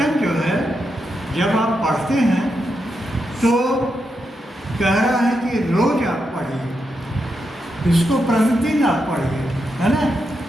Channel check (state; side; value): normal; both; correlation 0.84